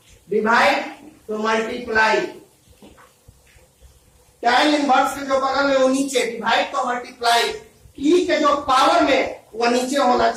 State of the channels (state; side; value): identical; both; correlation 1.00